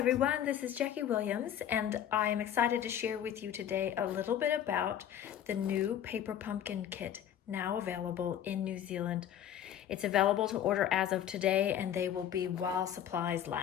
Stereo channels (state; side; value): quieter; right; 10.2 dB